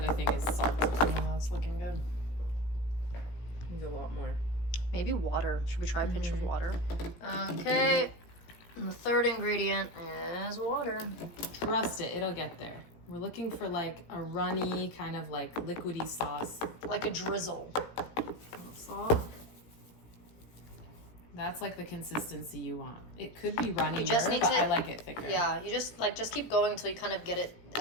thing is salt. Oh, that's looking good. Needs a lot more. Maybe water. Should we try a pinch of water? Okay. And the third ingredient is water. Trust it, it'll get there. We're looking for like a runny, kind of like liquidy sauce. Like a drizzle. Salt. That's like the consistency you want. It could be runny, You just need but to- I like it thicker. Yeah, you just keep going until you kind of get it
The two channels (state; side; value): late; right; 17 ms